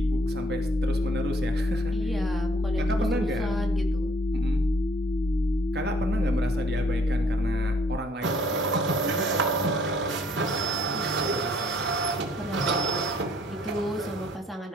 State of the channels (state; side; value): normal; both; correlation 0.62